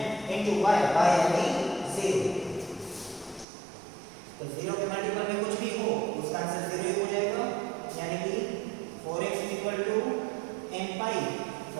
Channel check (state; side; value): drops out; left; at 3.5 s